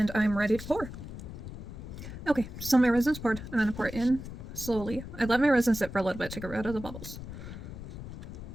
I'm ready to pour. Okay, so my resin's poured. I'm going to pour it in slowly. I let my resin sit for a little bit to get rid of the bubbles.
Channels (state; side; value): noise; left; rumble, 10 dB below the sound